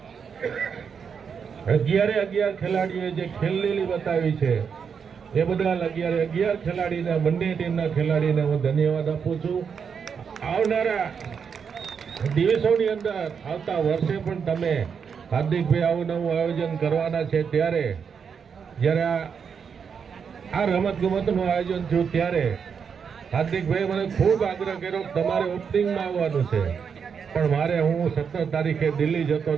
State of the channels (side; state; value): left; quieter; 6.6 dB